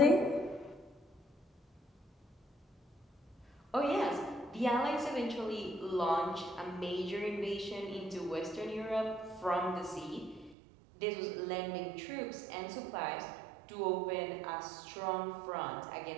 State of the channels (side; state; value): left; drops out; at 10.6 s